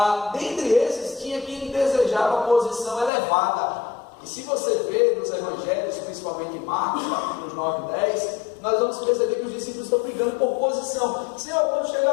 Dentre esses, tinha quem desejava posição elevada. E se você vê nos evangelhos, principalmente em Marcos, capítulos 9 e 10, nós vamos perceber que os discípulos estão brigando por posição. Senhor, quando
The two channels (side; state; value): right; drops out; at 3.1 s